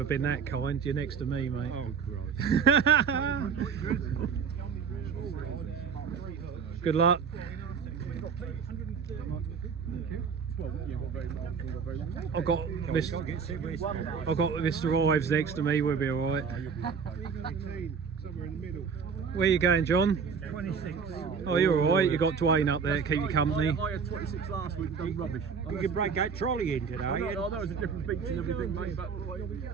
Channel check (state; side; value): quieter; left; 6.2 dB